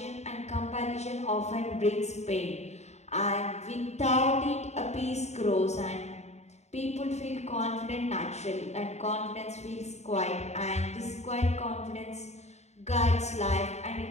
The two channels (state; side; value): late; right; 0.32 ms